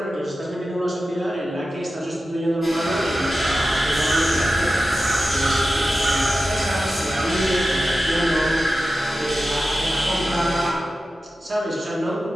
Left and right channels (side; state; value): both; normal; correlation 0.93